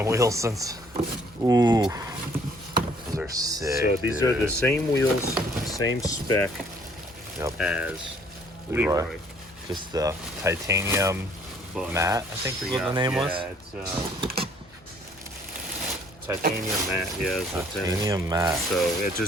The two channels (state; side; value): normal; both; correlation 0.60